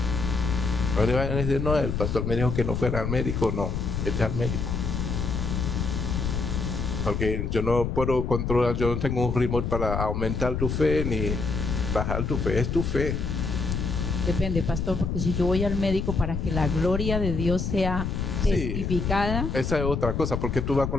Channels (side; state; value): left; noise; rumble, 2 dB below the sound